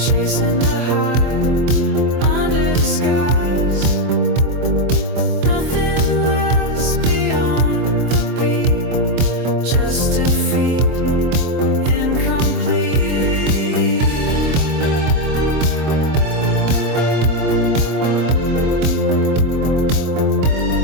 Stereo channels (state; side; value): late; left; 24 ms